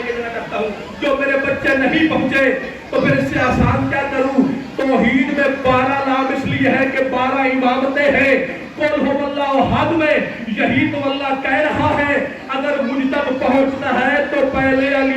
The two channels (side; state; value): both; identical; correlation 1.00